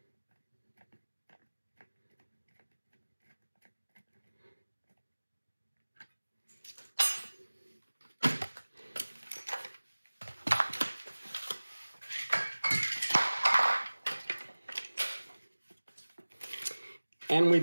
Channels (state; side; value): inverted; both; correlation -1.00